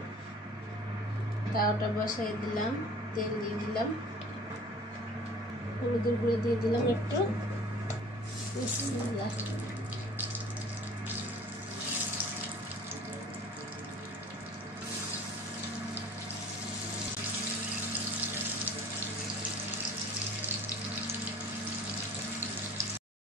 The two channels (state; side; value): normal; both; correlation 0.47